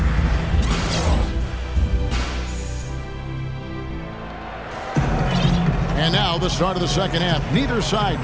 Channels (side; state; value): both; identical; correlation 1.00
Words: And now the start of the second half. Neither side